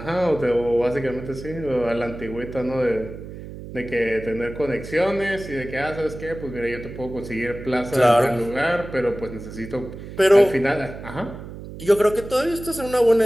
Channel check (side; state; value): right; noise; hum, 12 dB below the sound